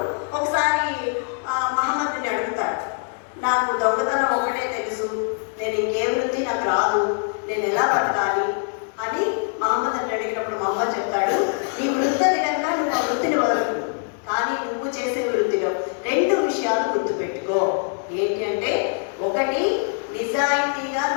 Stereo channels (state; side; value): silent; right; 56 dB below the other